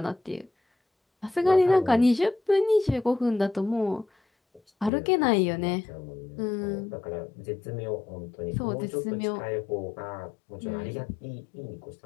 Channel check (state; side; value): drops out; right; at 4.9 s